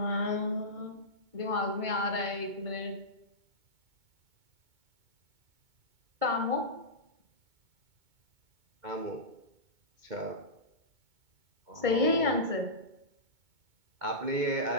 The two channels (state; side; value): late; left; 2.2 ms